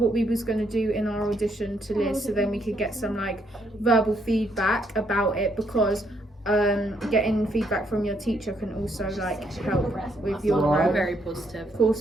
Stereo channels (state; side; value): normal; both; correlation 0.73